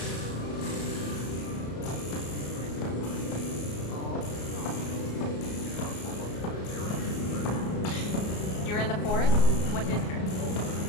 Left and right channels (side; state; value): right; late; 34 ms